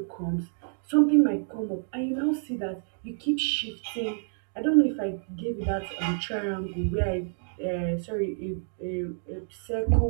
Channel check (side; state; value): left; silent; digital silence